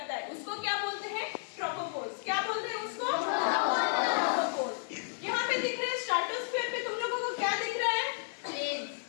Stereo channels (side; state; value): right; silent; 56 dB below the other